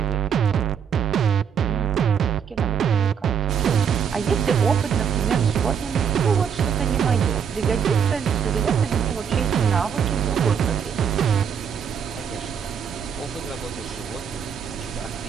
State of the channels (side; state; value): left; quieter; 7.3 dB